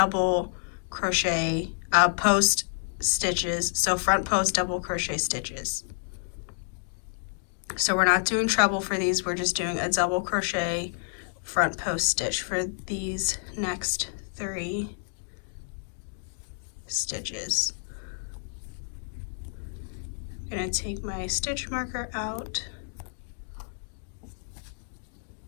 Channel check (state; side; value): silent; right; digital silence